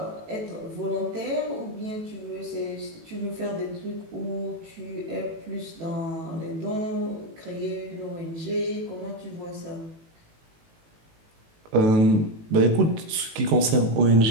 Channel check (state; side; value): late; left; 18 ms